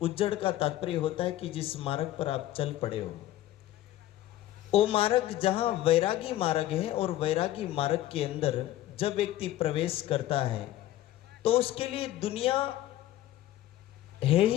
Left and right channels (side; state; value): right; quieter; 14.1 dB